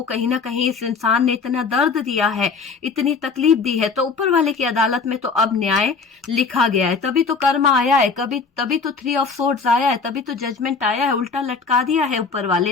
कहीं ना कहीं इस इंसान ने इतना दर्द दिया है, इतनी तकलीफ दी है, तो ऊपर वाले की अदालत में तो अब न्याय लिखा गया है। तभी तो कर्म आया है, तभी तो 3 ऑफ सोर्ड्स आया है, तभी तो जजमेंट आया है। उल्टा लटका दिया है ऊपर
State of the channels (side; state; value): right; quieter; 4.9 dB